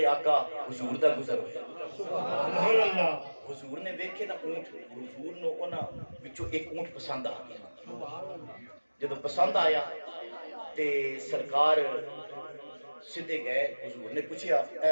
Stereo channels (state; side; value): inverted; both; correlation -1.00